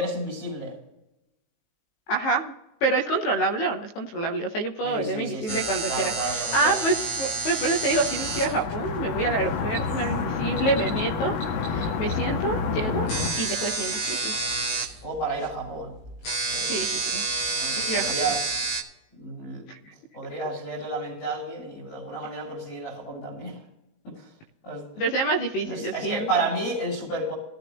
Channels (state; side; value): late; right; 18 ms